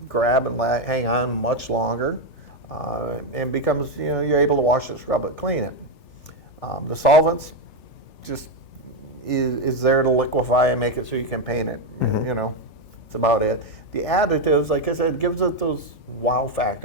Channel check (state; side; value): late; right; 3.4 ms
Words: grab and hang on much longer, and becomes you're able to wash it, scrub it, clean it. The solvents just is there to liquefy and make it so you can paint it. It's about it. The additives, like I said, gives it those wow